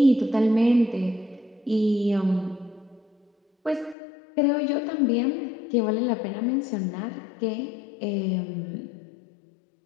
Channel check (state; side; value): drops out; right; at 4.0 s